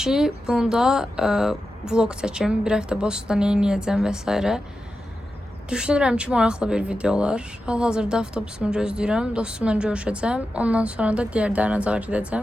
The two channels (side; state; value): both; normal; correlation 0.91